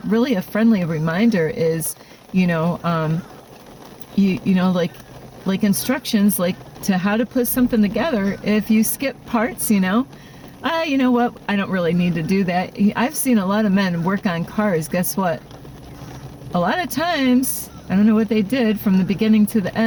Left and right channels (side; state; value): both; identical; correlation 1.00